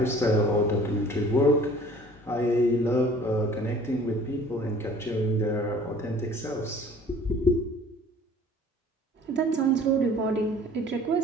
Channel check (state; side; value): normal; both; correlation 0.50